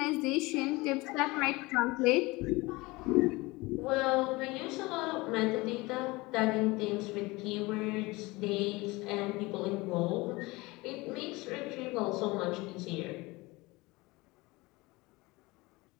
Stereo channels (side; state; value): right; quieter; 22.6 dB